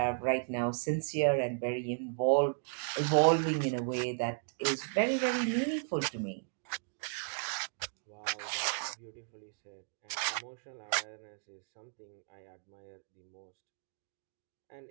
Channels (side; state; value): left; silent; digital silence